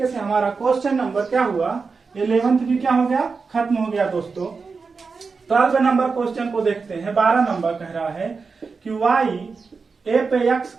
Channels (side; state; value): left; quieter; 4.8 dB